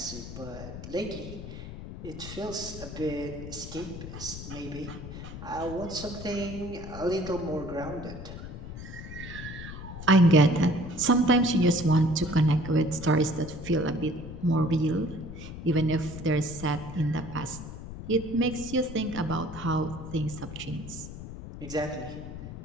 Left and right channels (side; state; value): left; noise; rumble, 10 dB below the sound